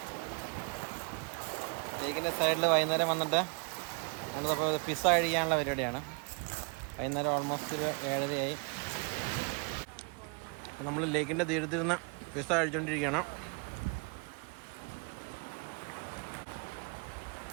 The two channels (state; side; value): quieter; left; 35.9 dB